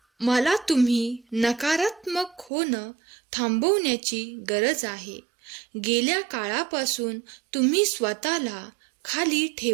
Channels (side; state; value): left; drops out; at 2.5 s